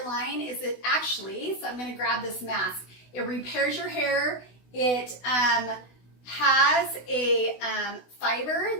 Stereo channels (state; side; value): late; right; 16 ms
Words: line is it actually, so I'm going to grab this mask, it repairs your hair. It has a fiber